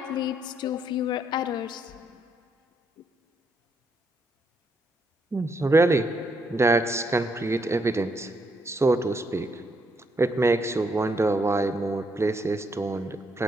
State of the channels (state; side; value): normal; both; correlation 0.75